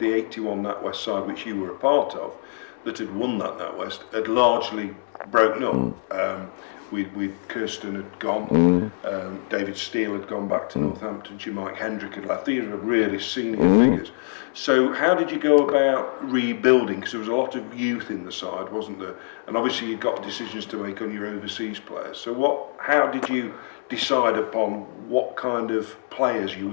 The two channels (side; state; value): right; silent; digital silence